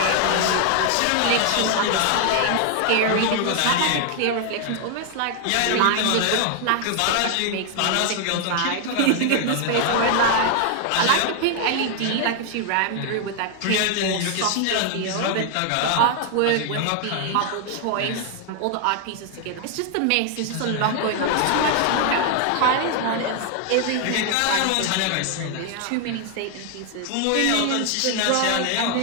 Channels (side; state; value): both; different; correlation 0.00